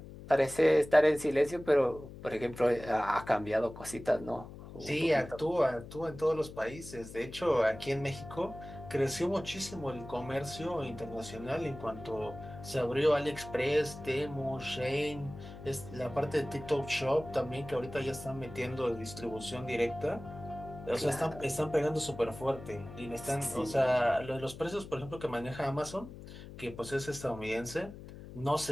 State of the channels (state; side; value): noise; left; hum, 14 dB below the sound